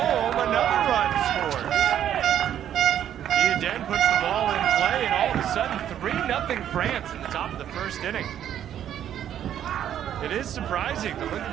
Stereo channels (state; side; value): quieter; left; 10.4 dB